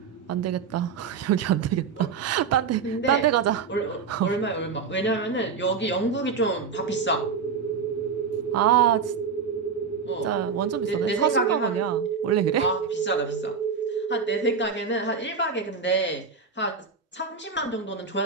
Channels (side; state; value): left; quieter; 5.7 dB